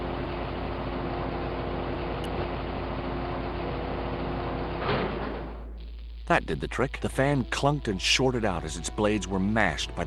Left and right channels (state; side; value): identical; both; correlation 1.00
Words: That did the trick. The fan clunked and shorted out as its blades were mashed by